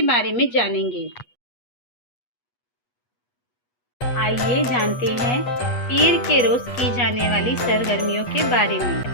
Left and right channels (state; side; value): late; right; 8.2 ms